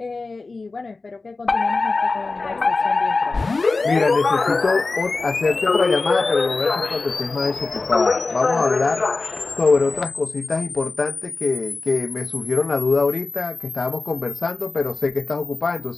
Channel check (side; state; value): right; quieter; 3.7 dB